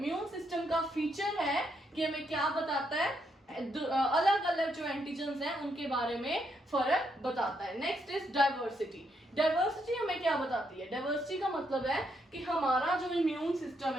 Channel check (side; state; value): both; normal; correlation 0.77